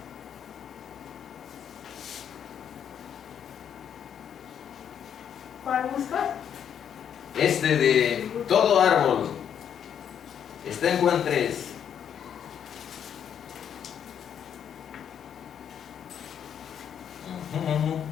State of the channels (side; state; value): right; quieter; 8.7 dB